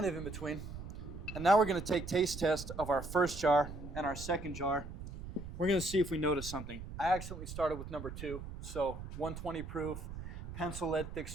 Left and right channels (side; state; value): right; noise; rumble, 10 dB below the sound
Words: of in between. And now we're gonna take taste test of our first jar and our second jar. We're gonna see if we notice something. I accidentally started with number 2, so 120 proof, pencil lead thick